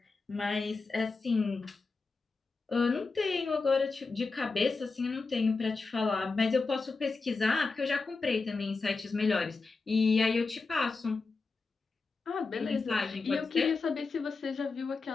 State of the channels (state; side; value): quieter; right; 4.1 dB